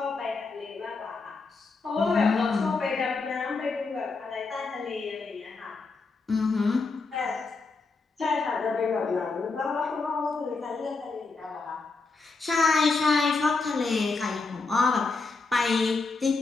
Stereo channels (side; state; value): right; quieter; 4.0 dB